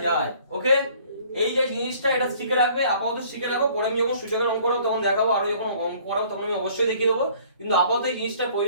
যায়। ওকে, এই যে জিনিসটা এটা শিখে রাখবে, আপাতত শিখে রাখো, পরে আমি যখন সূচকের অঙ্ক করব তখন দেখাবো, আরো যখন অঙ্ক করাবো তখন আমি অবশ্যই দেখিয়ে দেবো, কিন্তু আপাতত এই জিনিসটা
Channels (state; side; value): inverted; both; correlation -0.56